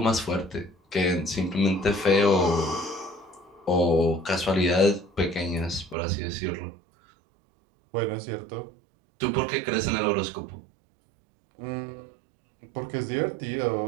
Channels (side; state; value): left; drops out; at 6.0 s